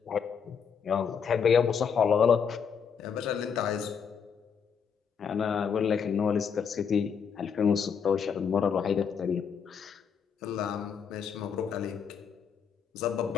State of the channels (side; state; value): right; quieter; 6.9 dB